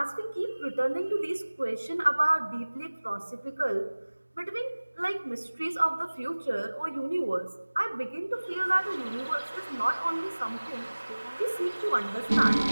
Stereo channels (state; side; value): inverted; both; correlation -1.00